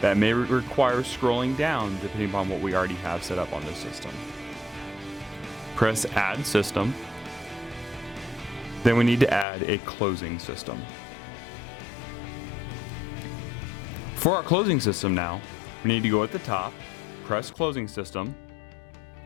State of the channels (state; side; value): drops out; right; at 9.5 s